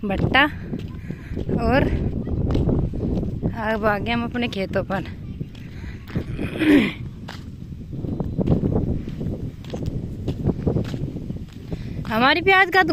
भट्टा और अब आ गए हम अपने खेतों पर। हमारी प्याज का तो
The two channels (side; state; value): both; identical; correlation 1.00